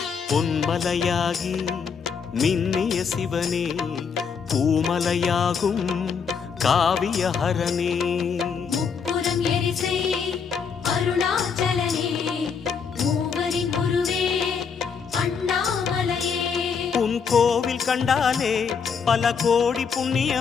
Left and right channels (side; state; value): right; quieter; 6.2 dB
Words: பொன்மலையாகி மின்னிய சிவனே, பூமலையாகும் காவியஹரனே. முப்புறம் எரிசை அருணாச்சலனே, மூவரின் குருவே அண்ணாமலையே. உன் கோவில் கண்டாலே பல கோடி